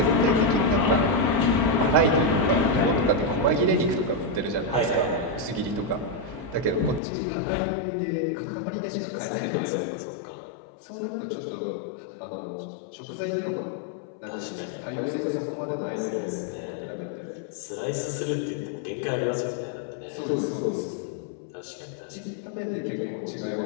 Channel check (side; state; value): right; drops out; at 7.0 s